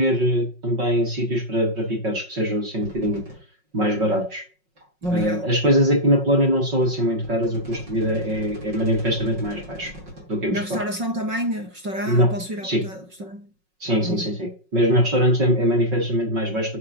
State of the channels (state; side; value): late; left; 5.4 ms